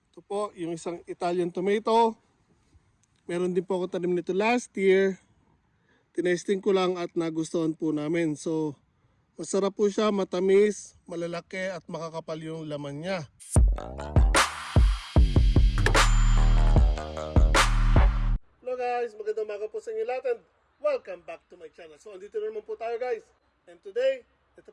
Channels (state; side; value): identical; both; correlation 1.00